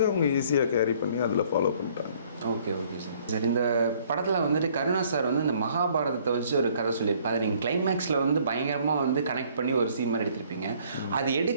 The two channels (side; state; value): both; inverted; correlation -0.60